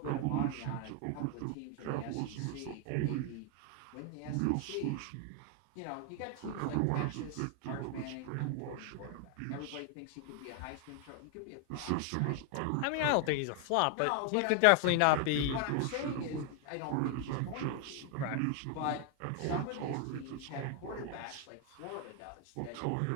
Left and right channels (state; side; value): different; both; correlation 0.00